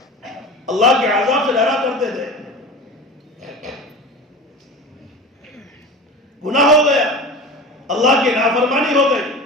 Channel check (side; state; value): both; normal; correlation 0.33